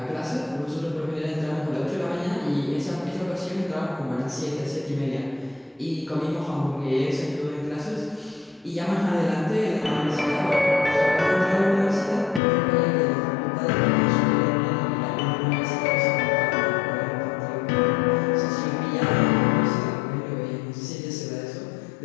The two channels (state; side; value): drops out; right; at 12.4 s